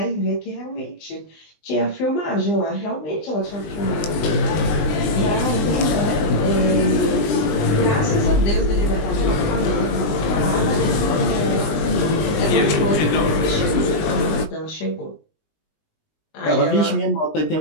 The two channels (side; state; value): right; late; 20 ms